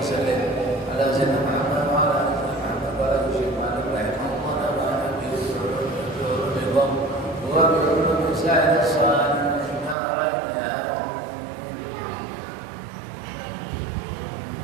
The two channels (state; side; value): drops out; left; at 10.0 s